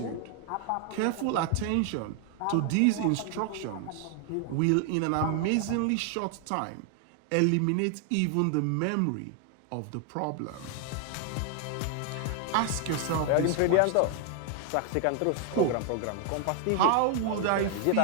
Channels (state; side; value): different; both; correlation 0.00